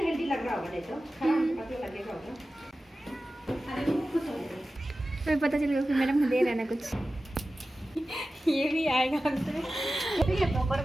हेल्दी लग रहा होगा नहीं तो पतला लगेगा होगा तो पता चलेगा फिर मैडम दे रहे ना कुछ ये भी आएगा हमसे ये पकड़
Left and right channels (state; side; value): normal; both; correlation 0.95